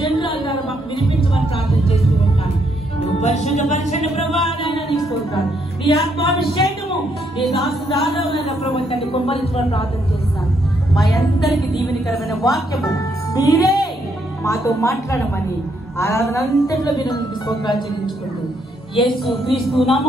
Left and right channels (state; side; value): normal; both; correlation 0.74